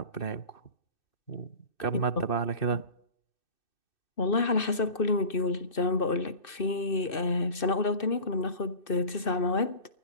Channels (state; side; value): late; right; 2.6 ms